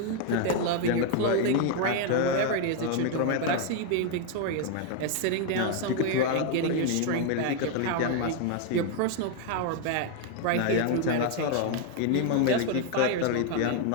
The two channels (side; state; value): both; different; correlation 0.01